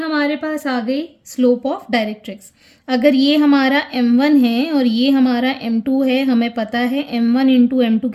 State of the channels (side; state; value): both; identical; correlation 1.00